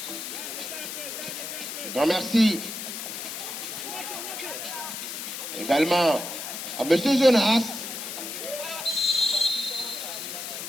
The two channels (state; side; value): noise; left; hiss, 6 dB below the sound